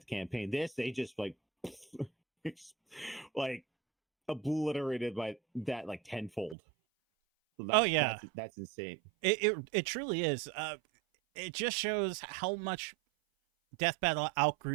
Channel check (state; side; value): drops out; left; at 6.6 s